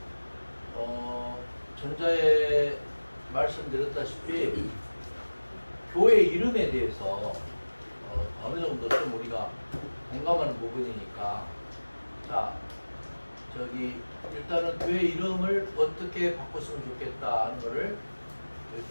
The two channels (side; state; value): both; inverted; correlation -1.00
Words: 들어. 전자에 말씀드렸다시피 교회 이름에 대해서 어느 정도 좀 우리가 공감하는 부분이니까 자 저기 일단은 교회 이름을 어떻게 바꿨으면 좋겠다 하는 거를